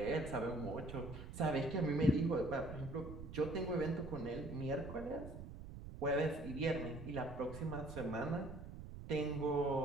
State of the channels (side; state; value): right; noise; rumble, 11 dB below the sound